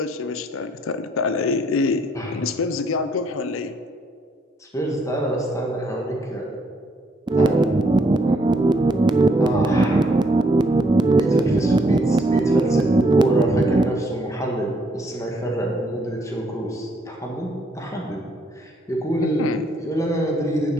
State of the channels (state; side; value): normal; both; correlation 0.69